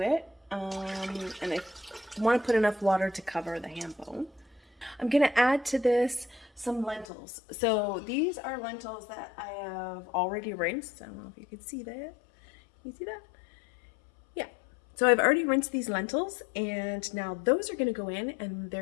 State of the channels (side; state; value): right; drops out; at 7.1 s